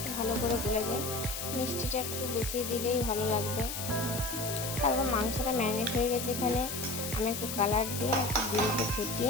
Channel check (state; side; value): noise; left; hiss, 5 dB below the sound